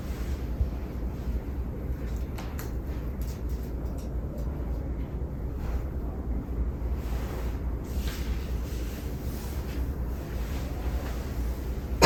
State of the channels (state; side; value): identical; both; correlation 1.00